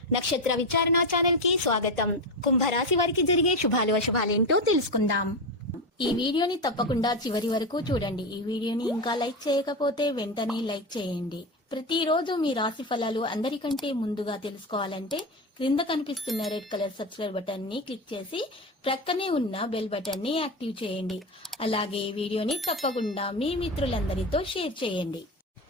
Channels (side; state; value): both; normal; correlation 0.17